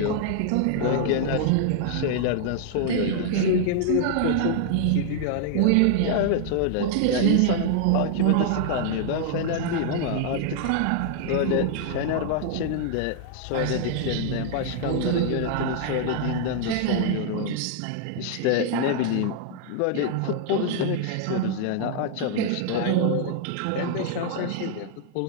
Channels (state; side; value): different; both; correlation -0.01